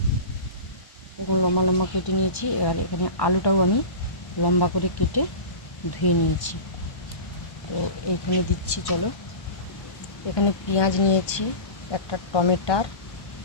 লম্বা কেটে নিয়েছি। এবার এখানে আলুটাও আমি লম্বা করে কেটে ধুয়ে নিয়েছি। তো এইখানে দিচ্ছি, চলো। এখানে পেঁয়াজ নিয়েছি, একটা টমেটার,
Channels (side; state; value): right; late; 1.1 ms